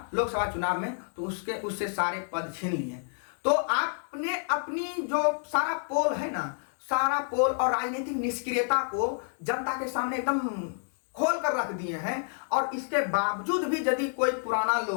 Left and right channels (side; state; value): right; silent; digital silence